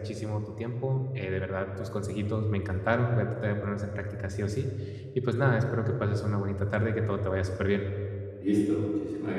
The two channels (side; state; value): both; identical; correlation 1.00